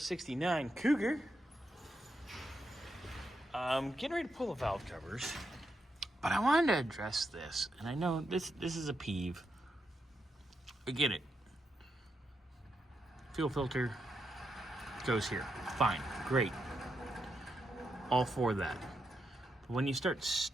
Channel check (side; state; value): both; normal; correlation 0.83